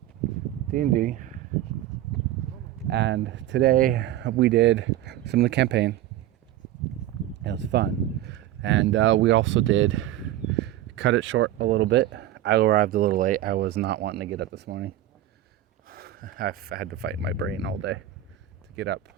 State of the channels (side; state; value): left; quieter; 13.1 dB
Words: D&D, and today we did some of the campaign. It was fun. And we also did cut it short a little bit. I arrived a little late. I was not wanting to get up this morning. I've had to fight my brain all day to get up